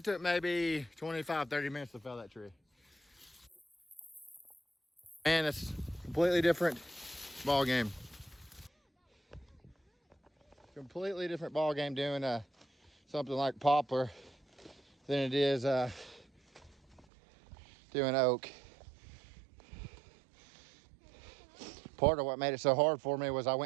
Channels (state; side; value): drops out; left; at 17.1 s